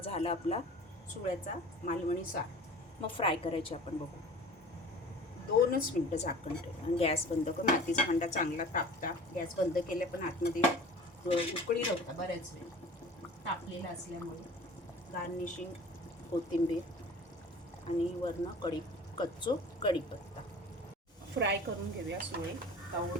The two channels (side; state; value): both; normal; correlation 0.42